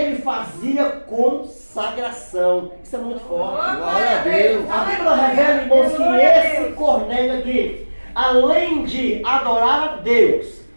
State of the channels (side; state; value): both; inverted; correlation -1.00